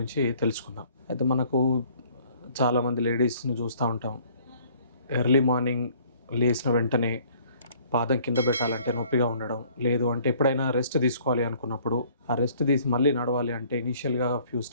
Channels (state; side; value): inverted; both; correlation -0.57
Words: తెలుసుకుందాం. అయితే మనకు చాలామంది లేడీస్ని చూస్తూ ఉంటాం. ఎర్లీ మార్నింగ్ లేచిన వెంటనే పాదం కింద పెట్టాలంటే నొప్పిగా ఉండడం, లేదు అంటే ఎప్పుడైనా రెస్ట్ తీసుకోవాలి అనుకున్నప్పుడు ఆ రెస్ట్ తీసి మళ్ళీ నడవాలి అంటే ఇనీషియల్గా ఫ్యూ